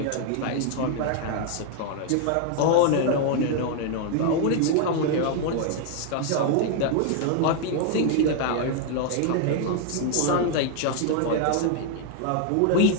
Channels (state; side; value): different; both; correlation 0.00